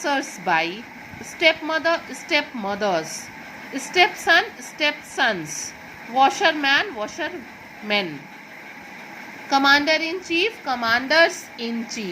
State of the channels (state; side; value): identical; both; correlation 1.00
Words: by, step mother, step mothers, step son, step sons, washer man, washer man, commander in chief, commanders in